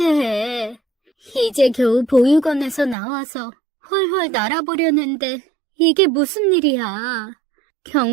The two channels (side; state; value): left; drops out; at 3.0 s